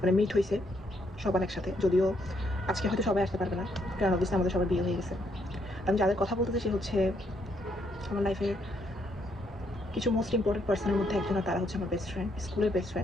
মিট হয়েছে সবার একসাথে। যদিও আজকে হয়তো সবাই আসতে পারবে না, কারণ অবভিয়াসলি আমাদের সবার বিয়ে হয়ে গেছে। আমি যাদের কথা বলতেছি সে হচ্ছে আমার লাইফের কিছু মোস্ট ইম্পর্টেন্ট পার্সনের মধ্যে একজন, আর তারা হচ্ছে আমার বেস্ট ফ্রেন্ড, স্কুলের বেস্ট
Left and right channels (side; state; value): both; normal; correlation 0.73